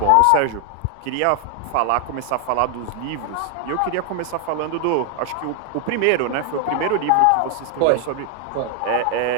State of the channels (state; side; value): different; both; correlation 0.00